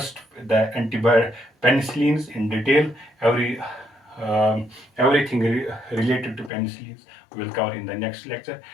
the antibiotic penicillins in detail. Everything related to penicillins we will cover in the next lecture.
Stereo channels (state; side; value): drops out; right; at 6.5 s